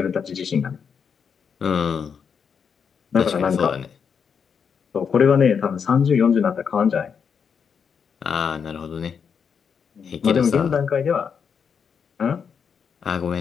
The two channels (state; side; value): quieter; right; 6.7 dB